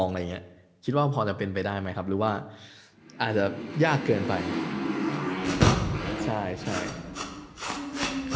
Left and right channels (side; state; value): both; identical; correlation 1.00